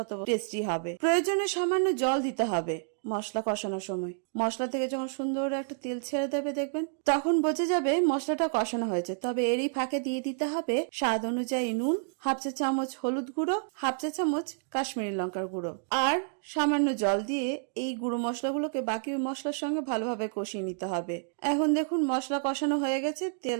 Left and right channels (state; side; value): silent; left; digital silence